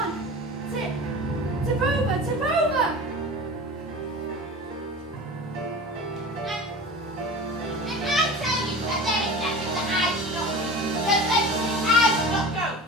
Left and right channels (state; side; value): normal; both; correlation 0.35